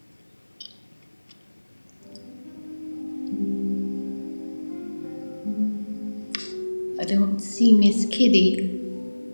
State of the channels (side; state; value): both; inverted; correlation -1.00